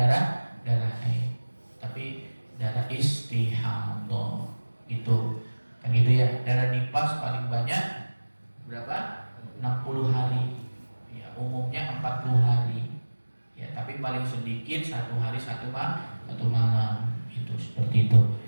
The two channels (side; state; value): both; inverted; correlation -1.00